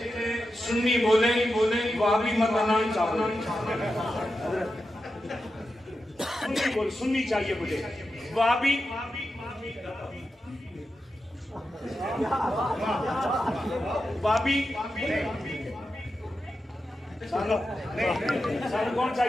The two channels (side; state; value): both; normal; correlation 0.90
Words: سنی بولے وہابی متنان چاہو سنی چاہیے مجھے وہابی وہابی سانو کون